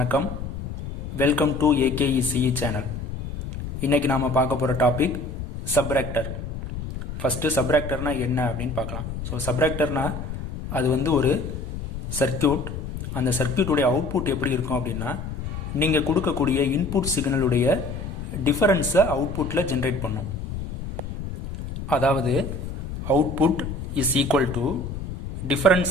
Welcome to AKECE channel. இன்றைக்கி நாம் பார்க்க போகிற டாபிக் சப்ராக்டர். ஃபஸ்ட்டு சப்ராக்டர்னால் என்ன அப்படின்னு பார்க்கலாம். ஸோ சப்ராக்டர்னால் அது ஒரு சர்க்கியூட். அந்த சர்க்கியூட்டுடைய அவுட்புட் எப்படி இருக்கும் அப்படின்னா, நீங்கள் கொடுக்கக்கூடிய இன்புட் சிக்னலுடைய டிஃபரன்ஸை அவுட்புட்டில் ஜென்ரேட் பண்ணும். அதாவது output is equal to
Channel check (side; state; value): left; noise; rumble, 7 dB below the sound